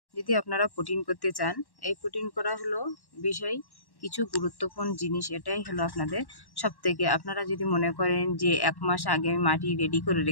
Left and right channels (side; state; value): right; late; 1.1 ms